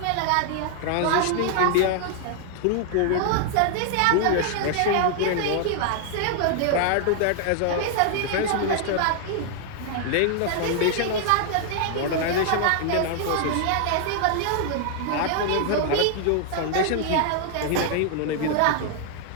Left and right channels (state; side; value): different; both; correlation 0.00